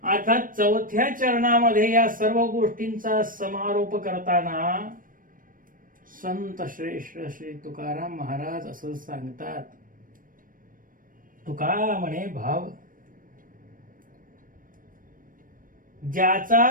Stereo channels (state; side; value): late; left; 0.40 ms